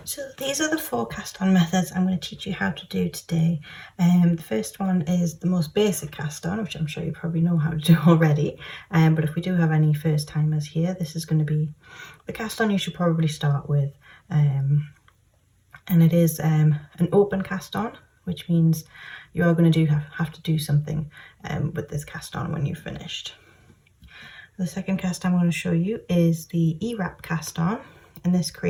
So these are the 4 cast on methods I'm going to teach you how to do today. The first one is the most basic cast on, which I'm sure you probably know how to do already. But if we do have any first timers here, this is going to be the cast on you should probably start with. And it is an open cast on, which means you are going to have to do something with this cast on when you've finished. The second cast I'm going to show you is the E-wrap cast on, and this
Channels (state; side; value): identical; both; correlation 1.00